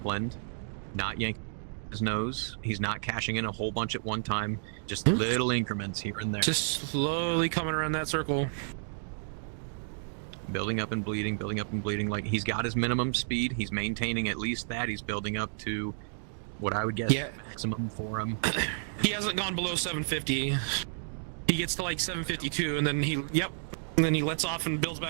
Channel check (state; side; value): silent; left; digital silence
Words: not yanking his nose. He's not cashing in a whole bunch at one time, just little increments here and there. Just slowly coming around that circle. Building up and bleeding, like, he's got his minimum speed. He's maintaining at least that. He's building up to what I would guess maximum for him. He hasn't gone below 750. He gets to like 752, and then he lets off and builds